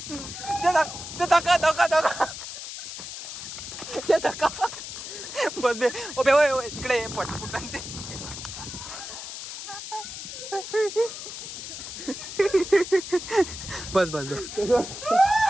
धका बस बे ओबे ओय तिकडे पटपुटन ते बस बस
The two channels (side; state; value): left; noise; hiss, 9 dB below the sound